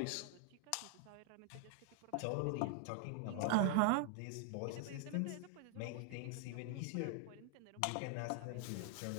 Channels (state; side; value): different; both; correlation 0.00